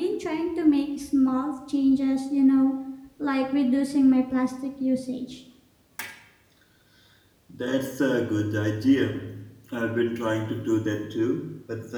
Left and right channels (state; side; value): identical; both; correlation 1.00